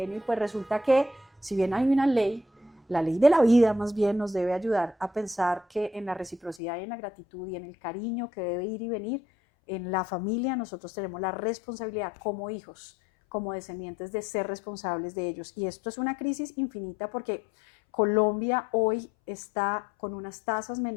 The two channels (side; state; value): right; drops out; at 6.6 s